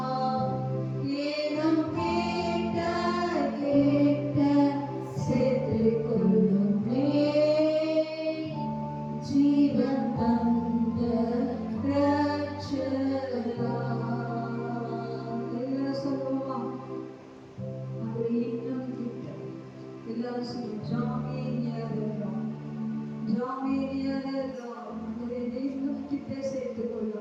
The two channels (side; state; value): both; identical; correlation 1.00